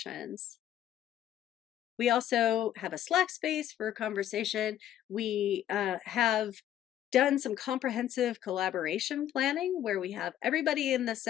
We also have a Slack space for conversation. We have done some comprehensive collaboration planning where we have everybody in the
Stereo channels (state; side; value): quieter; right; 11.5 dB